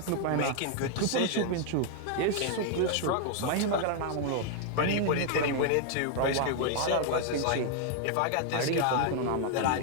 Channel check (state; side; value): different; both; correlation 0.00